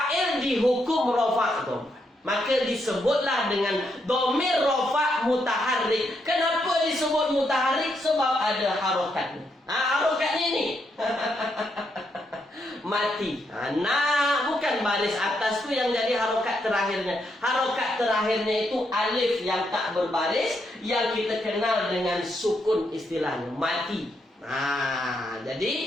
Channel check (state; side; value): normal; both; correlation 0.79